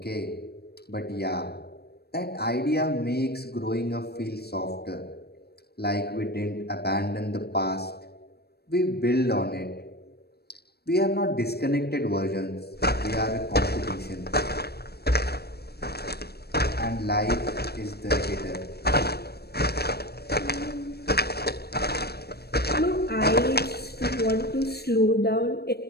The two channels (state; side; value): late; right; 0.47 ms